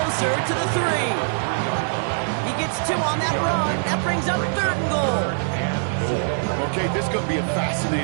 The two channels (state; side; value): silent; left; 64 dB below the other